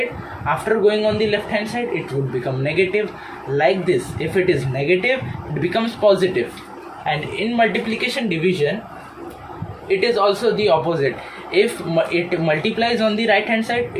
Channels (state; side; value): identical; both; correlation 1.00